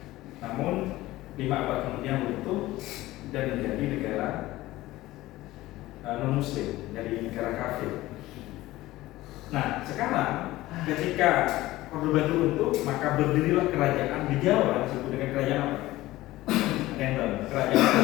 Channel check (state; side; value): quieter; right; 17.2 dB